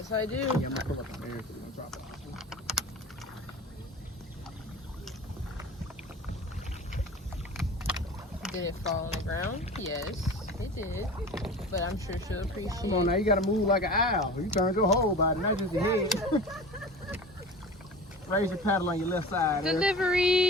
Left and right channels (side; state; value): both; normal; correlation 0.37